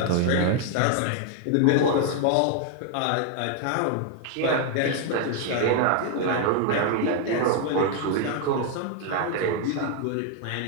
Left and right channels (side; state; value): both; different; correlation 0.00